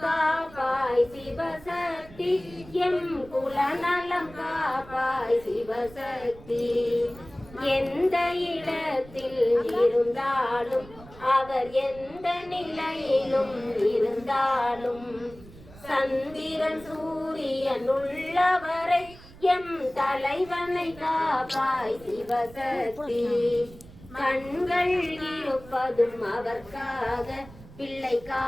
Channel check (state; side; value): noise; right; rumble, 20 dB below the sound